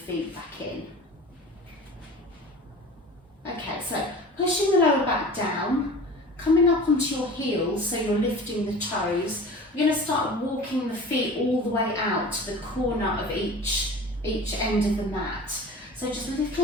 back in. Okay, so pushing the lower back down, coming up onto your heels so you're lifting the toes. We're going to start walking the feet all the way out to the corner of each end of the mat. So just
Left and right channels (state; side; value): normal; both; correlation 0.39